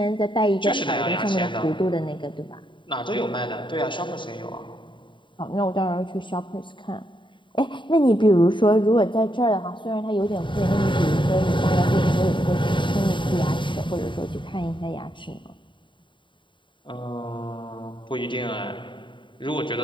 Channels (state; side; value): late; right; 0.23 ms